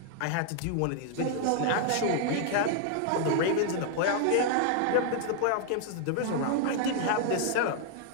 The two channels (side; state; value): both; different; correlation -0.01